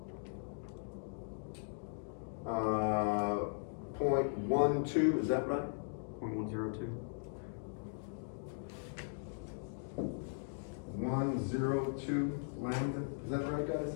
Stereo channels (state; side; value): silent; right; digital silence